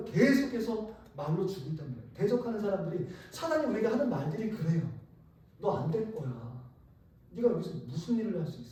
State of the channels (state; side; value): identical; both; correlation 1.00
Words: 계속해서 말로 주고 있단 말이에요. 대적하는 사람들이, 사단이 우리에게 하는 말들이 그래요. 너 안 될 거야. 네가 여기서 무슨 일을 할 수